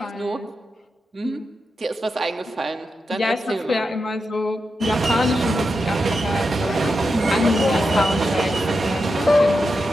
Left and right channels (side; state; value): both; normal; correlation 0.88